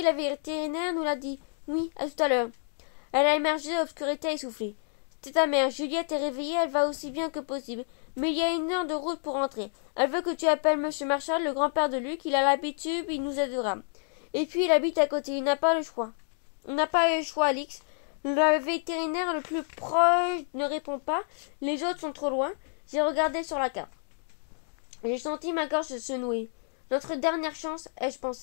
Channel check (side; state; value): right; silent; 59 dB below the other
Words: vétérinaire nous l'a dit. Oui, à tout à l'heure. Elle a émergé de l'obscurité essoufflée. C'était ta mère. Juliette est réveillée, elle va aussi bien que possible. Mais il y a 1 heure de route pour rentrer. Elle veut que tu appelles M. Marshall, le grand-père de Luc. Il a l'habitude, il nous aidera. Et puis il habite à côté, il n'a pas le choix. On n'a pas le choix, Alix. Le vétérinaire le plus proche ne répond pas. Les autres sont trop loin. J'ai regardé sur la carte. J'ai senti ma gorge se nouer. Notre dernière chance, ai-je